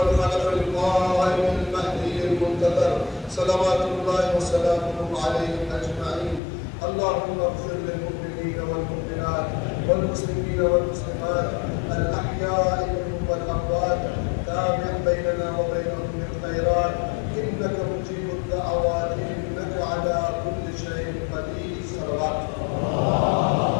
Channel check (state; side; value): drops out; right; at 6.4 s